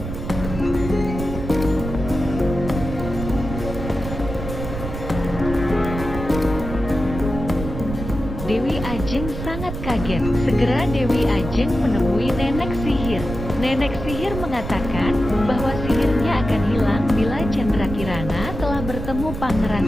Dewi Ajeng sangat kaget. Segera Dewi Ajeng menemui nenek sihir. Nenek sihir mengatakan bahwa sihirnya akan hilang bila Candrakirana telah bertemu Pangeran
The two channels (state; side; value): noise; right; rumble, 7 dB below the sound